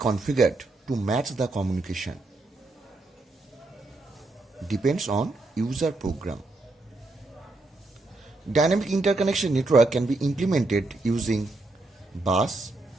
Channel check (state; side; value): quieter; left; 3.1 dB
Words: to match the communication. Depends on user program. Dynamic interconnection network can be implemented using bus,